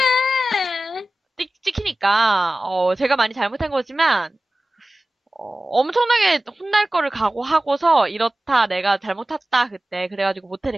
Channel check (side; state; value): both; normal; correlation 0.96